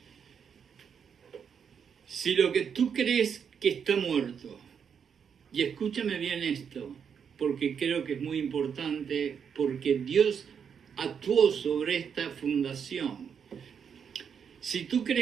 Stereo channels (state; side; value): quieter; left; 7.2 dB